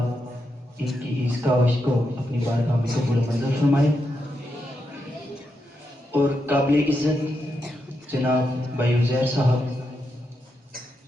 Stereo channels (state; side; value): normal; both; correlation 0.84